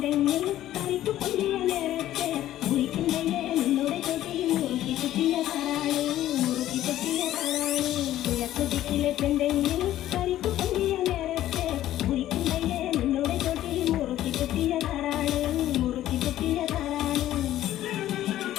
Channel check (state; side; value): quieter; right; 13.3 dB